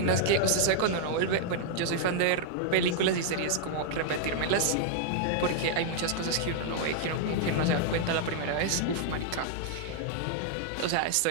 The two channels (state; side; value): different; both; correlation -0.01